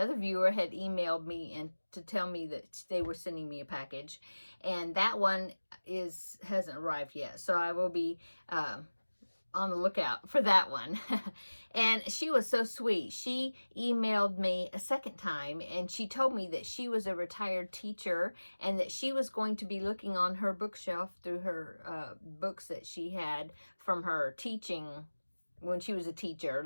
viewer had emailed me and to tell me that they were sending me a package, and that one hasn't arrived yet. So I will be on the lookout for that one. And she was so sweet. She emailed me a second time, and she told me that she was a retired teacher and that she was going to be looking on her bookshelf through her books that she had from her teaching when she was a teacher,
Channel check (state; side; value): inverted; both; correlation -1.00